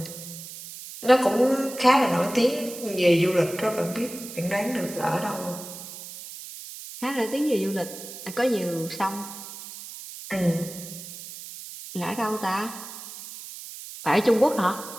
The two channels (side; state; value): right; noise; hiss, 12 dB below the sound